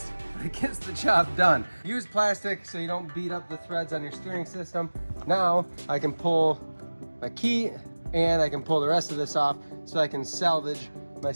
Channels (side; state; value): both; inverted; correlation -1.00